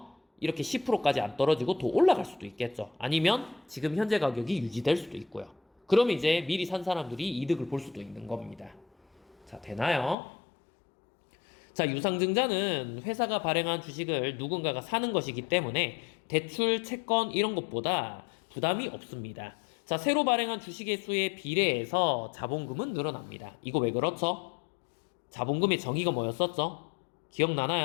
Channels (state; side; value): drops out; right; at 10.2 s